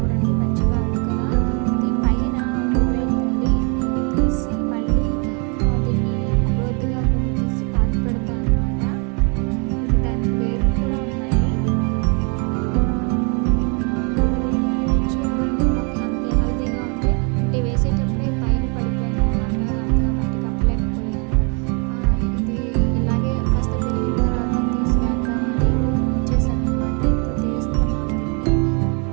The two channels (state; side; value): quieter; left; 35.7 dB